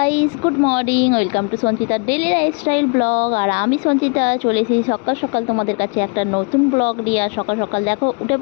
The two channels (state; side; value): quieter; right; 35.8 dB